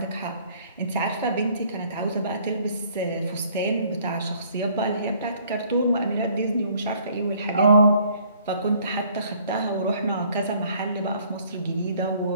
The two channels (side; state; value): both; inverted; correlation -0.60